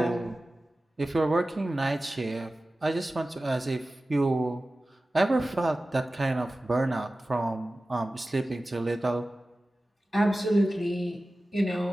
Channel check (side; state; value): both; normal; correlation 0.96